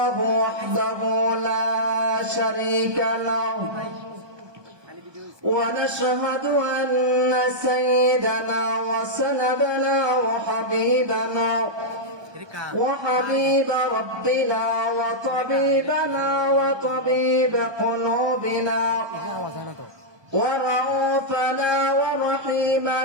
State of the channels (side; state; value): left; late; 1.2 ms